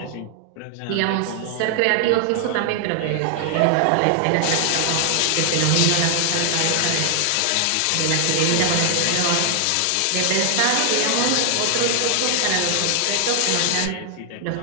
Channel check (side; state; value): both; different; correlation 0.00